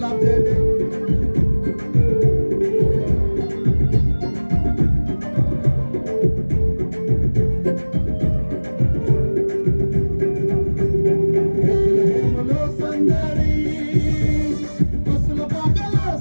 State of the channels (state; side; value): inverted; both; correlation -1.00